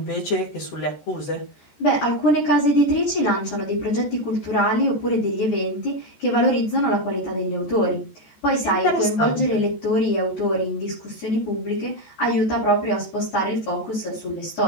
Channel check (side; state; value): right; late; 14 ms